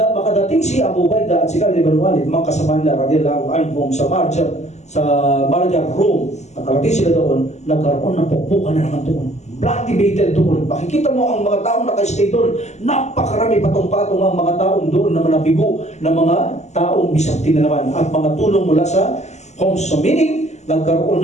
si Abu Ubaidah at si Khalid ibn Walid, mga kasama nila radiyallahu anhum sa Marja, Rome, nakarating sila doon, nagkaroon ng pukpukan na naman doon. Bloody battle doon. Makikita mo ang mga taong nakastay doon. Napakarami patong-patong ang mga taong doon na nabigo ng mga taong Byzantine na naman at mga tulong mula sa Homs. So meaning, nagkaroon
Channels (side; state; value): right; late; 0.33 ms